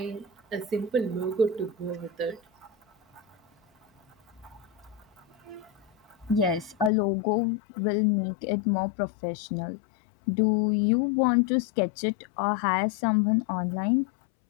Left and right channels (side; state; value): right; drops out; at 6.9 s